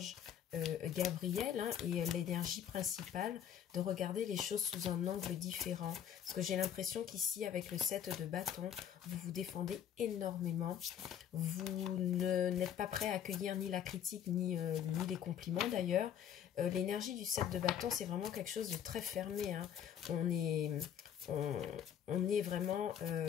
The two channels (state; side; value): quieter; right; 9.4 dB